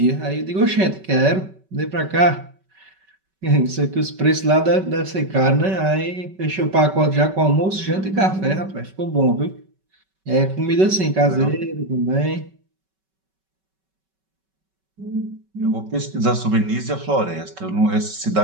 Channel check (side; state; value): left; late; 5.3 ms